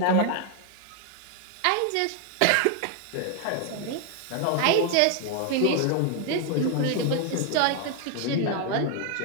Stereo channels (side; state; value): both; different; correlation 0.00